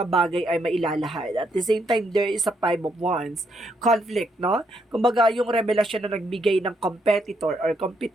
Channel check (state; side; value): normal; both; correlation 0.75